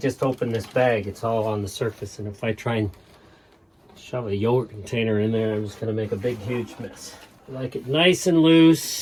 opened this bag, it's all on the surface, and if I try and shove a yogurt container in there, I'm just going to make a big huge mess. I like it nice and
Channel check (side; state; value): both; identical; correlation 1.00